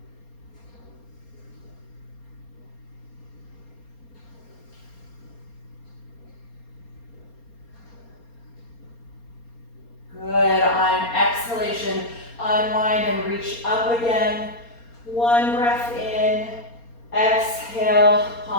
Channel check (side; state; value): right; late; 4.3 ms